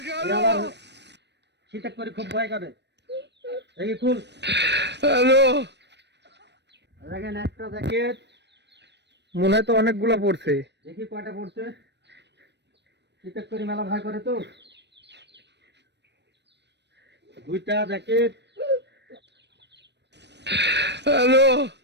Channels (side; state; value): left; late; 0.50 ms